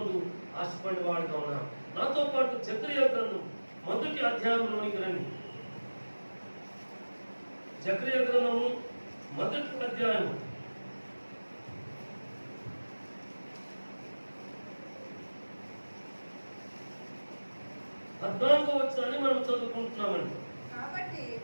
ఆశపడేవాడుగా ఉన్నాను. నాతో పాటు జకరియా గ్రంథం 1వ అధ్యాయంలోనికి రండి. జకరియా గ్రంథము 1వ అధ్యాయం 14వ వచనాన్ని మనం చదువుకుంటున్నామండి.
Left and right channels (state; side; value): inverted; both; correlation -1.00